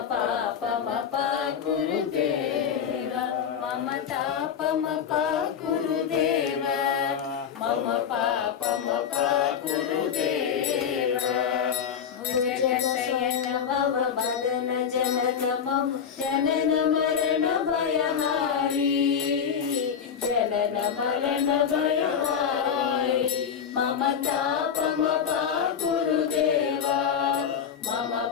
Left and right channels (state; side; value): quieter; right; 7.7 dB